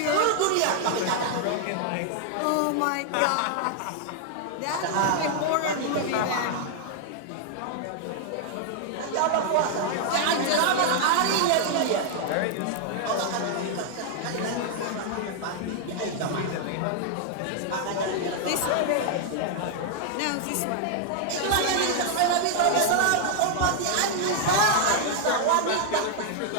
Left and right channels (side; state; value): both; different; correlation 0.00